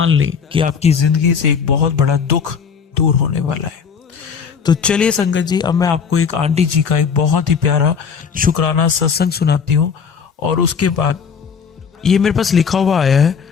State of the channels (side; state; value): right; quieter; 6.3 dB